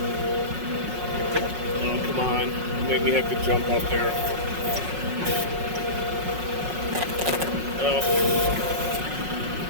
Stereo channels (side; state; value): left; late; 5.5 ms